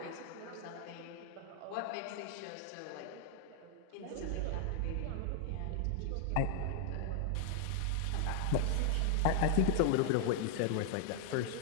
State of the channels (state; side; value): different; both; correlation 0.00